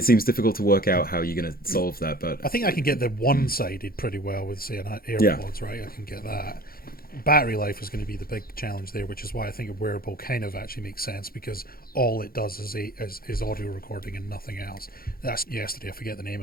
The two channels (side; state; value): right; late; 0.43 ms